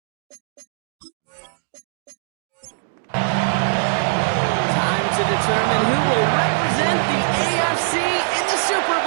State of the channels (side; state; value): left; silent; digital silence